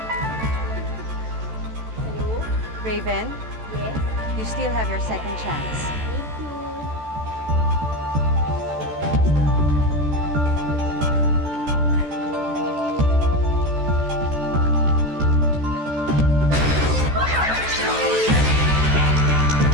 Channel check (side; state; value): left; late; 14 ms